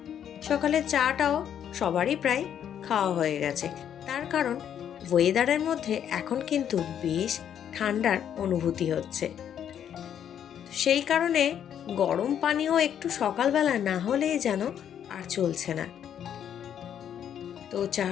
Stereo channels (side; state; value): right; quieter; 9.3 dB